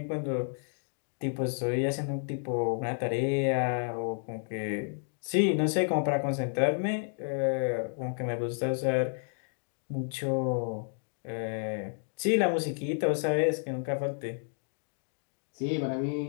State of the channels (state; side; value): silent; right; 57 dB below the other